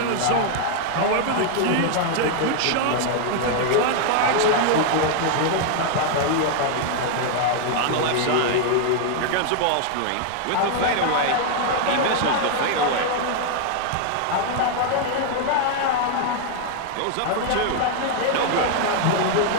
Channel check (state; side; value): different; both; correlation 0.00